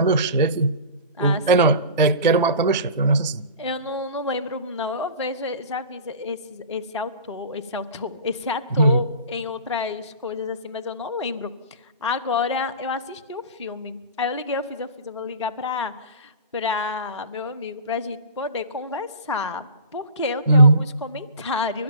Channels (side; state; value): both; inverted; correlation -0.37